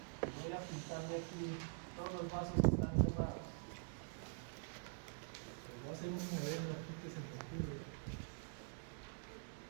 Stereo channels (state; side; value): silent; left; digital silence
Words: Voy a pintarle aquí, todos los vasos están cerrados. Voy a hacer un modelo aquí que se me ocurre.